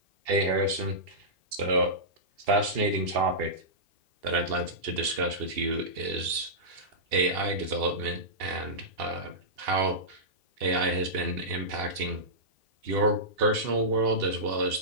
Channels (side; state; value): left; late; 2.8 ms